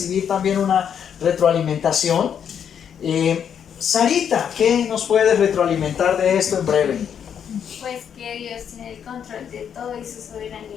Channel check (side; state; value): right; quieter; 8.2 dB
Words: también una retroalimentación. Sarita, ¿qué nos puedes retroalimentar de esto en breve? Pues que Dios tiene el control de todo y su